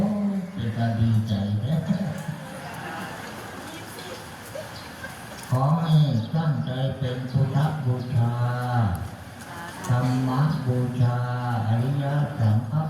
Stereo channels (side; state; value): both; identical; correlation 1.00